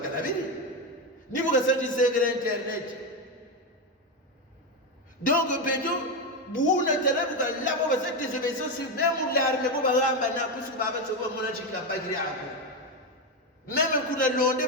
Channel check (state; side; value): normal; both; correlation 0.11